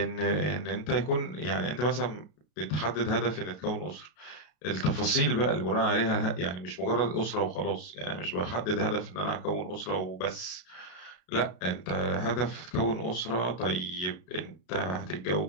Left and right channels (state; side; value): late; right; 33 ms